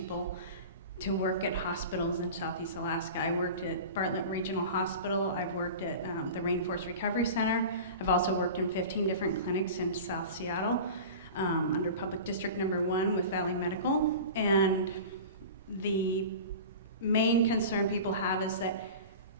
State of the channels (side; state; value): both; inverted; correlation -0.34